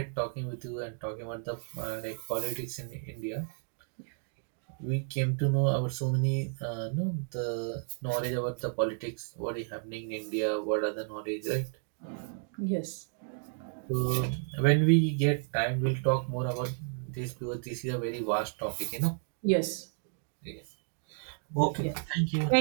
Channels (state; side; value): silent; left; digital silence